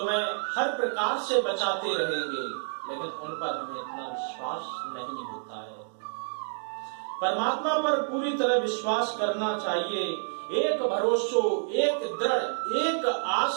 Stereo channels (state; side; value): silent; left; digital silence